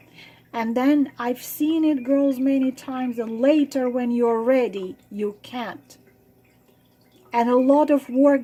And then I've seen it, girls, many times, and later when you're ready, you can't. And a lot of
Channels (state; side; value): identical; both; correlation 1.00